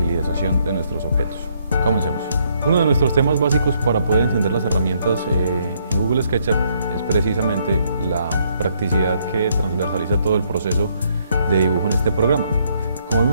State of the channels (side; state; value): both; inverted; correlation -0.71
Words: de nuestros objetos. Comencemos. Uno de nuestros temas básicos para poder entender las herramientas en Google SketchUp es precisamente la practicidad que transversaliza todo el proceso de dibujo en este programa. Como